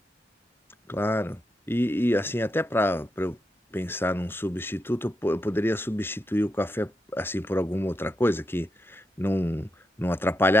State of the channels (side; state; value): both; normal; correlation 0.85